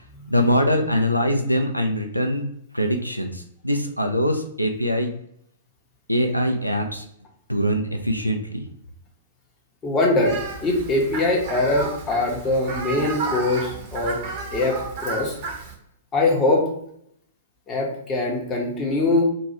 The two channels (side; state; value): both; inverted; correlation -0.35